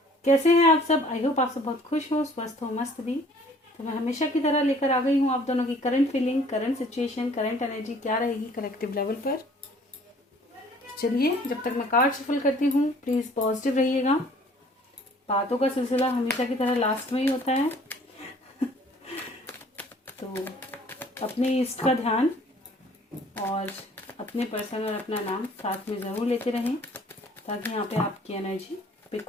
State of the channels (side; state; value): both; normal; correlation 0.55